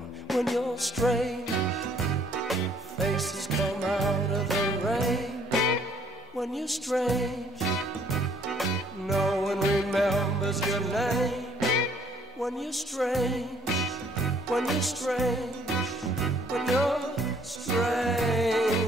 When you're strange, faces come out of the rain. When you're strange, no one remembers your name. When you're strange, when you're strange, when you're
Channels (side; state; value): both; normal; correlation 0.63